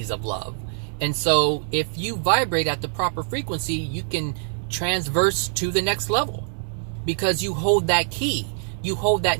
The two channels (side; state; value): left; silent; digital silence